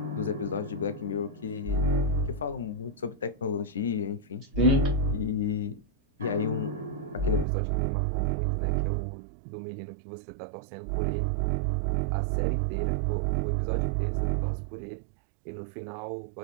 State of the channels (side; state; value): left; drops out; at 7.5 s